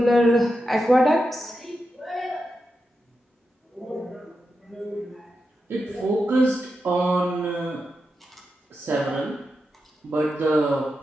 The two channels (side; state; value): both; normal; correlation 0.88